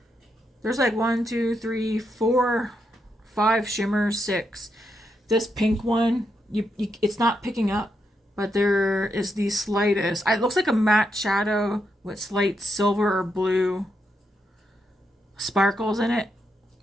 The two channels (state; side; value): normal; both; correlation 0.82